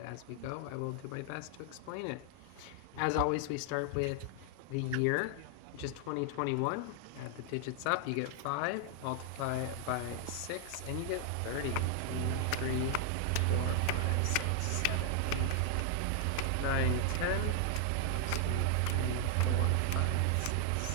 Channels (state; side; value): different; both; correlation 0.00